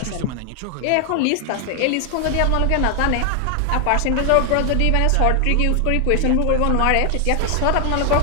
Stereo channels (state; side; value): different; both; correlation 0.00